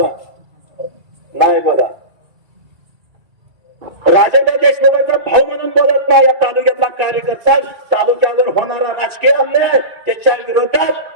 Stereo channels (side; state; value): left; late; 2.3 ms